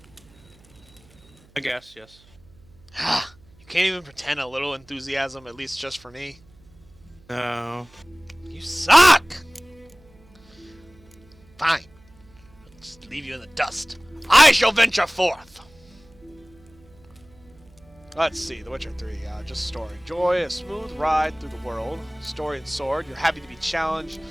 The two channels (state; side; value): noise; right; hum, 27 dB below the sound